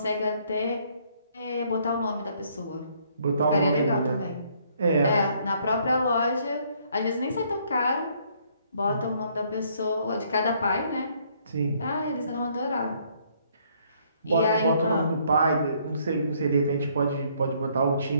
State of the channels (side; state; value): both; inverted; correlation -0.66